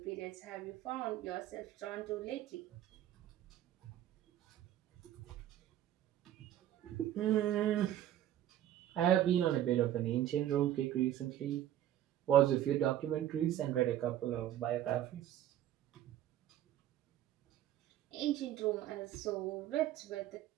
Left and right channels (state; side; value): quieter; left; 12.2 dB